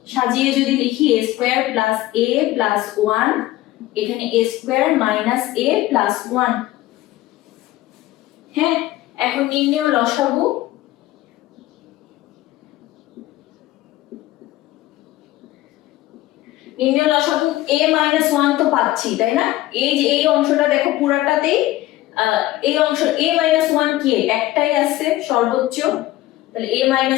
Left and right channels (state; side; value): quieter; right; 16.2 dB